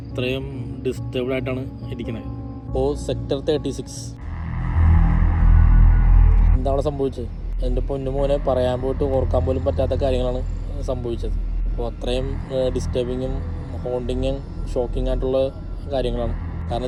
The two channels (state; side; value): identical; both; correlation 1.00